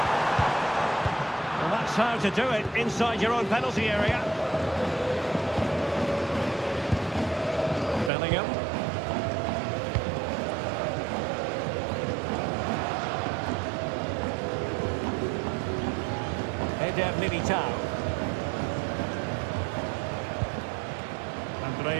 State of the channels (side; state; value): left; drops out; at 8.1 s